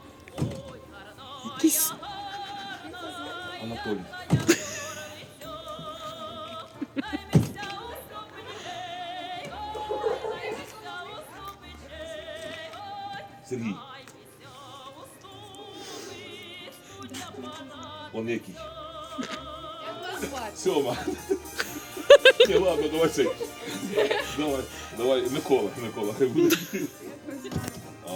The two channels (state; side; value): identical; both; correlation 1.00